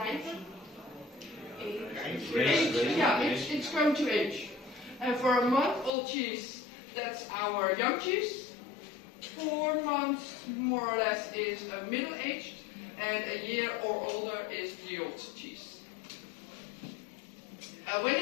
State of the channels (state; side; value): drops out; right; at 5.9 s